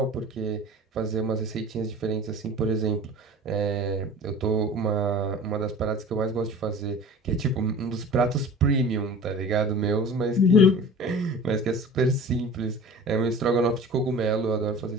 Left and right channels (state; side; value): normal; both; correlation 0.40